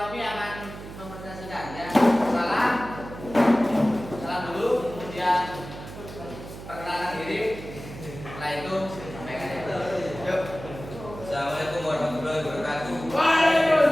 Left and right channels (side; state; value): right; noise; hum, 13 dB below the sound